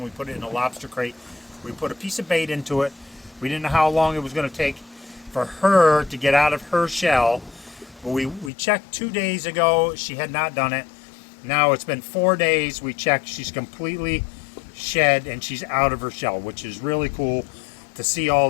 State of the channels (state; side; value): drops out; right; at 8.5 s